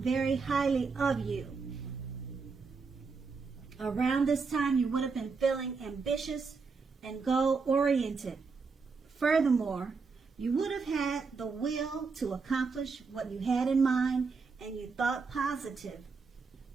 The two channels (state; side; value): quieter; left; 4.8 dB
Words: highly of you. Around this time, you would have been feeling ambitious and goal-oriented. Furthermore, you would have had the will to accomplish what you had in mind and you thought positive.